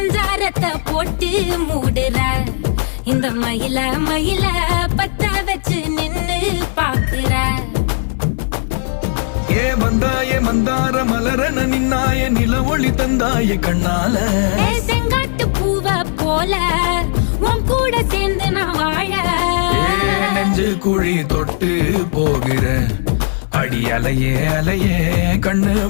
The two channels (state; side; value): silent; right; 62 dB below the other